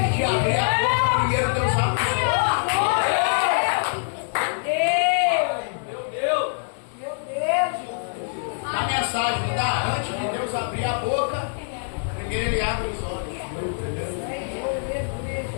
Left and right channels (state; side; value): silent; right; digital silence